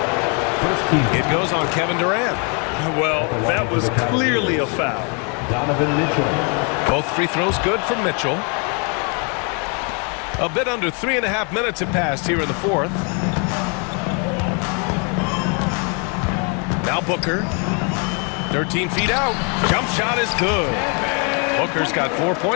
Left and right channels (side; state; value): right; quieter; 36.5 dB